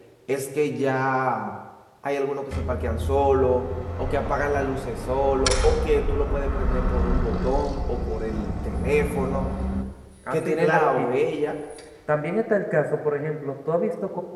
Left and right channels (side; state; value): both; identical; correlation 1.00